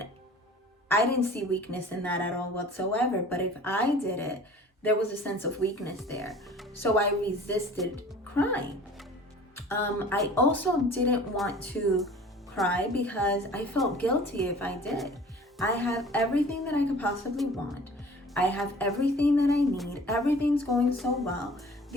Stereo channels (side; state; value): both; normal; correlation 0.46